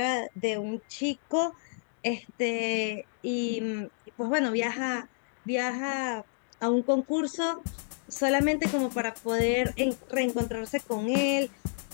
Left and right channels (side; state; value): right; silent; digital silence